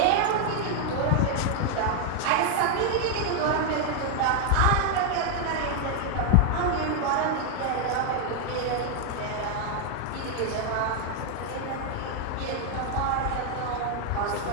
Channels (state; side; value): different; both; correlation 0.00